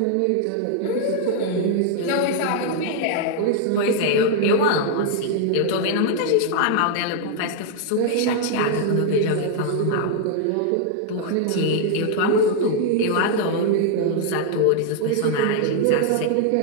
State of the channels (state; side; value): different; both; correlation 0.00